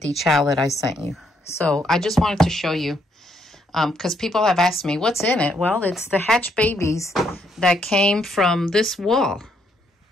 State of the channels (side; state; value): both; normal; correlation 0.73